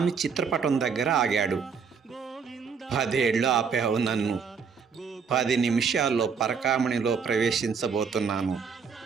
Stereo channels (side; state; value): left; quieter; 5.9 dB